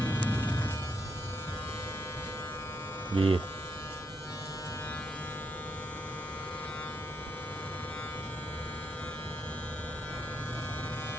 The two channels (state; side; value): normal; both; correlation 0.78